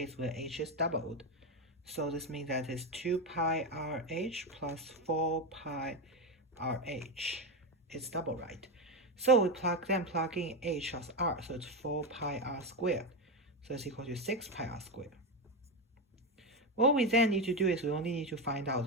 where h is doubled. So this means that it's 2 pi rh plus 4 pi rh. It's double, right? So we plug in h as r, so it's 4 pi r squared. So it's equal to 6 pi r squared. What we then need to do is we only need to find out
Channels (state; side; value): normal; both; correlation 0.12